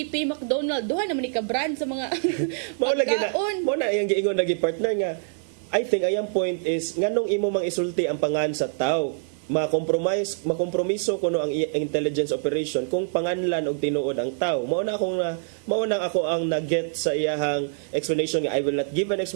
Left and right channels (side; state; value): left; silent; 62 dB below the other